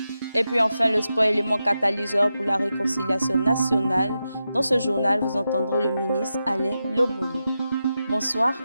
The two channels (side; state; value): both; inverted; correlation -0.89